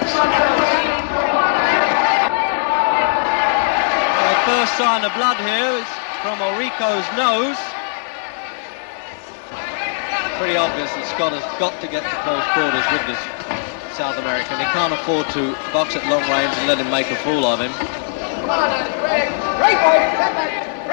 first sign of blood here is from Orico's nose. Pretty obvious that Scott has got to get to close quarters with this South American. He can't afford to box at long range and let him make a fool of him.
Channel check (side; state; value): right; silent; digital silence